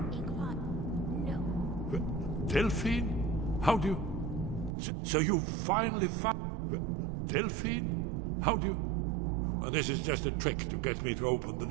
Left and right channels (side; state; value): left; drops out; at 4.8 s